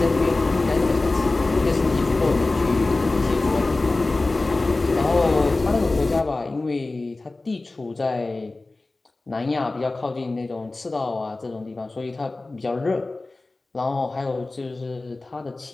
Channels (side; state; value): right; quieter; 3.2 dB